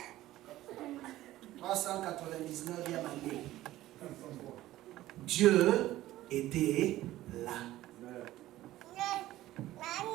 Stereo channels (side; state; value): left; quieter; 15.3 dB